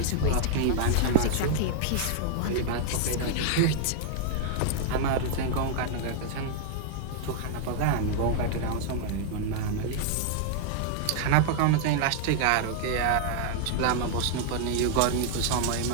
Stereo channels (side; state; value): both; different; correlation -0.01